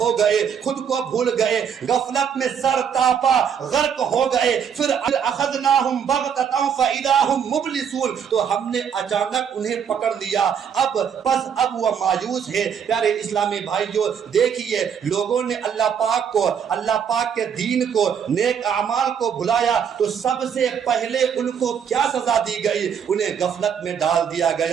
گئے، خود کو بھول گئے، غفلت میں سر تاپا غرق ہو گئے۔ پھر اخذناہم بغتۃ فاذا ہم مبلسون، تو ہم نے اچانک انہیں پکڑ لیا، اب وہ مایوس ہے۔ پیارے اسلامی بھائیوں، دیکھیے لوگوں نے اللہ پاک کے دین کو، نیک اعمال کو بھلایا تو سب سے پہلے ان کو کیا سزا دی گئی؟ انہیں غفلت میں ڈال دیا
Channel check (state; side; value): quieter; left; 7.7 dB